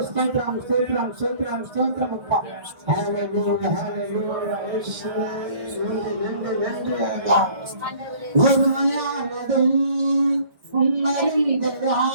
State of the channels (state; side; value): late; left; 1.7 ms